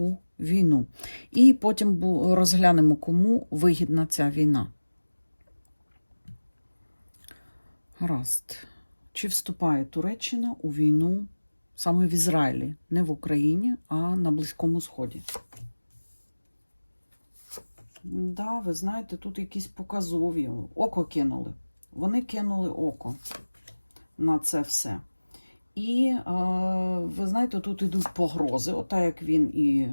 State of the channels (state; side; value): inverted; both; correlation -1.00